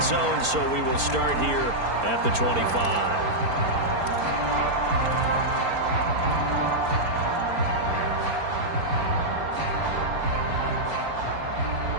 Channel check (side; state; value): left; late; 4.4 ms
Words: zone, so we will start here at the 25.